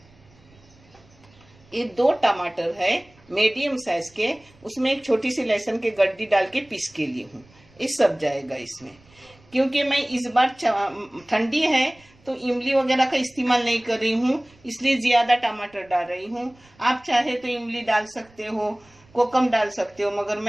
ये 2 टमाटर है मीडियम साइज के, उसमें एक छोटी सी लहसुन की गड्डी डाल के पीस के लिए हूँ। ये सब जाएगा इसमें। क्योंकि मैं इस बार ठंडी है तो इमली वगैरह का इस्तेमाल नहीं कर रही हूँ, इसलिए ज्यादा टमाटर डाल रही हूँ। आप चाहे तो इमली डाल सकते हो, कोकम डाल सकते हो, मगर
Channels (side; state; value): right; noise; rumble, 29 dB below the sound